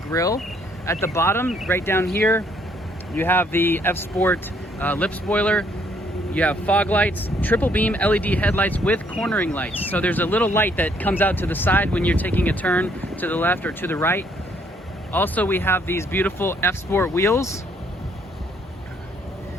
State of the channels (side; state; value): both; normal; correlation 0.67